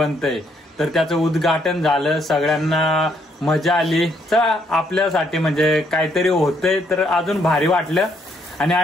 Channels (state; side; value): normal; both; correlation 0.71